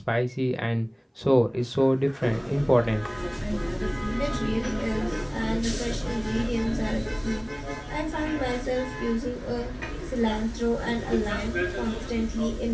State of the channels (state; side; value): identical; both; correlation 1.00